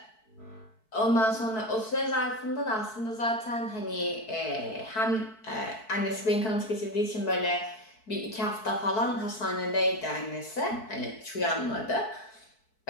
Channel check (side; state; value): right; late; 4.6 ms